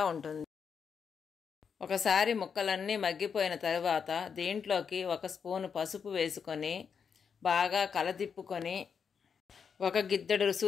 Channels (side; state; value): right; quieter; 6.5 dB